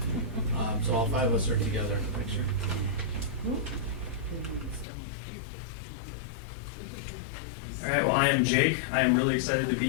So all 5 of us are together in the picture. All right, well, I am Jake. I am really excited to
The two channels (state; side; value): drops out; right; at 4.9 s